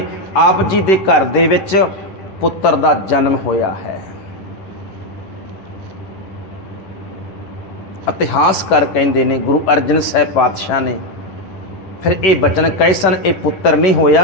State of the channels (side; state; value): right; late; 11 ms